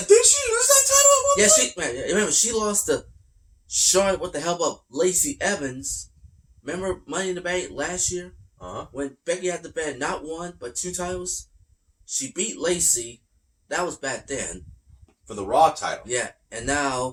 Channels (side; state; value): both; identical; correlation 1.00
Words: she lose that title at one point? Remember, she lost to Charlotte, what the hell about Lacey Evans. Remember Money in the Bank last year? Uh-huh. When Becky had to bend not 1, but 2 titles? She beat Lacey. That was back then. For the Raw title. Yeah, and